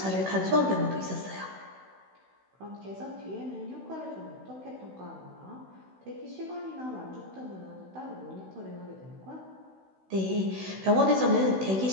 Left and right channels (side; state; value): left; late; 16 ms